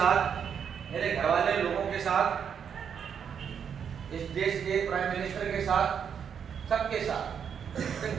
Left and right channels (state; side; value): quieter; left; 7.6 dB